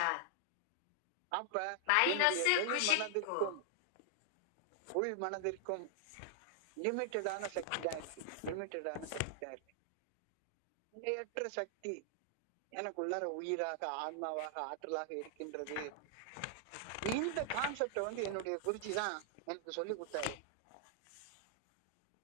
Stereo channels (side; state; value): both; different; correlation 0.00